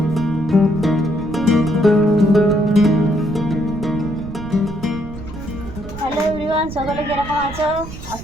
everyone, সকলে কিরকম আছো?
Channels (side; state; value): right; noise; rumble, 12 dB below the sound